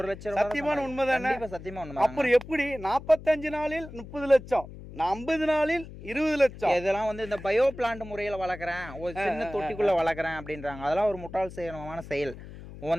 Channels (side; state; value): left; noise; hum, 14 dB below the sound